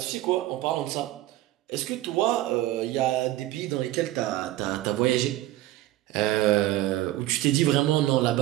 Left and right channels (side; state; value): left; quieter; 15.4 dB